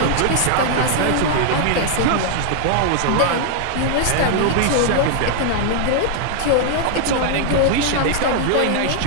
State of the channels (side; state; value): both; different; correlation 0.00